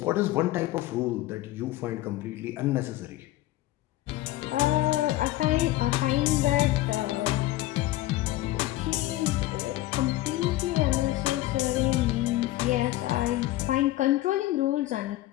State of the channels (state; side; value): quieter; right; 16.3 dB